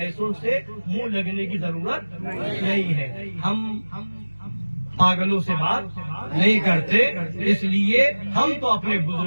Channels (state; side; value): inverted; both; correlation -1.00